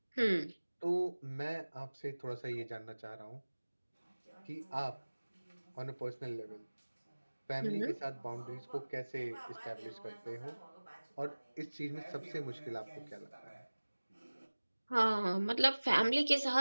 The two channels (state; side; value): inverted; both; correlation -1.00